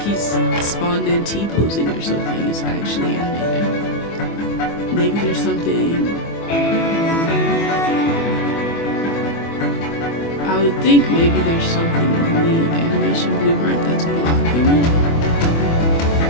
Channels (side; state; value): right; late; 24 ms